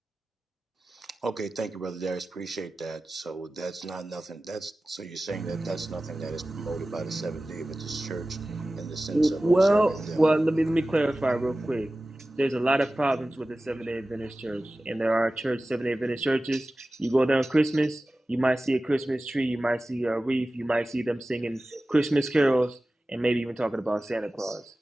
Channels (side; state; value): both; normal; correlation 0.96